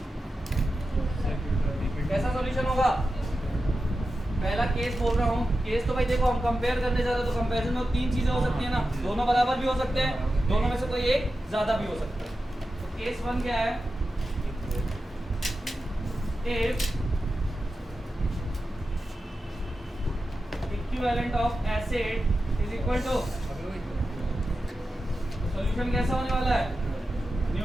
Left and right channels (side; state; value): both; normal; correlation 0.92